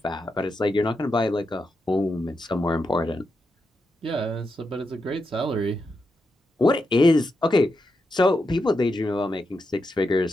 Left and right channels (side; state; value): both; normal; correlation 0.86